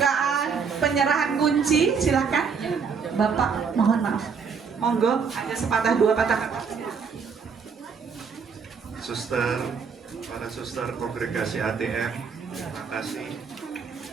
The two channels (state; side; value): quieter; left; 5.9 dB